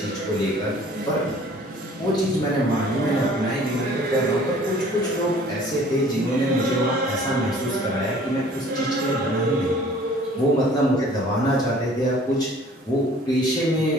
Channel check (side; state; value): both; normal; correlation 0.52